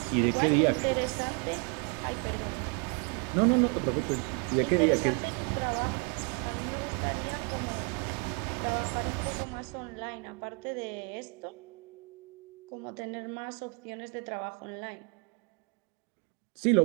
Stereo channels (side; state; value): left; quieter; 33.5 dB